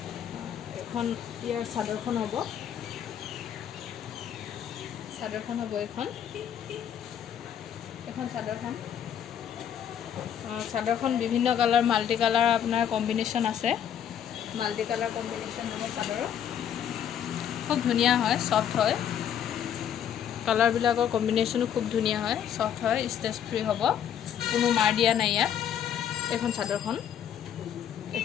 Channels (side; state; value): right; quieter; 9.3 dB